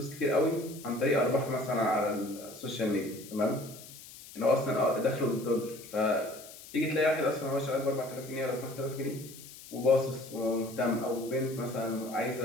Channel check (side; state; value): left; noise; hiss, 17 dB below the sound